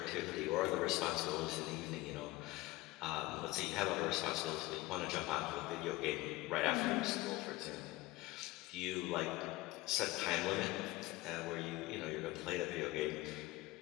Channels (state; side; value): quieter; right; 20.0 dB